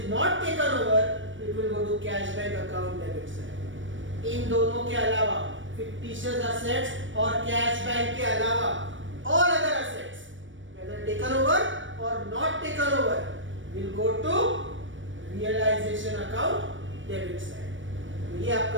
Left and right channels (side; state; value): left; late; 0.56 ms